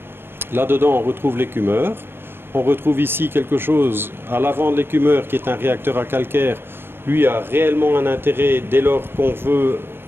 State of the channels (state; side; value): late; left; 0.11 ms